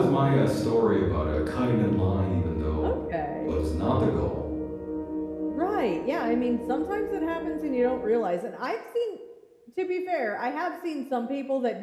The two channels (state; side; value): identical; both; correlation 1.00